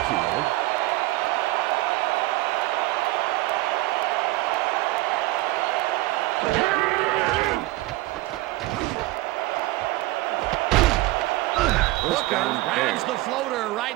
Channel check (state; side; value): quieter; left; 19.1 dB